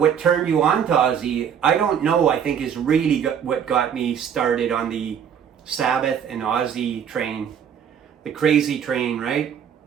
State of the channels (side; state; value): left; quieter; 8.2 dB